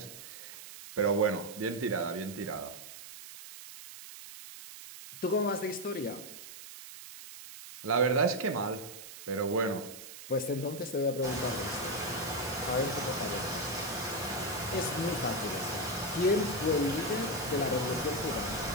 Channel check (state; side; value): noise; right; hiss, 13 dB below the sound